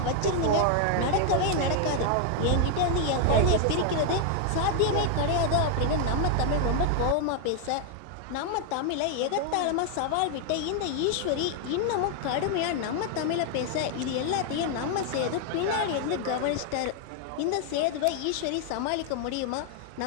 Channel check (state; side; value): different; both; correlation 0.00